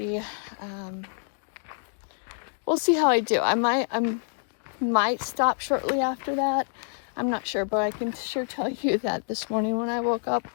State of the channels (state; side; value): silent; right; 60 dB below the other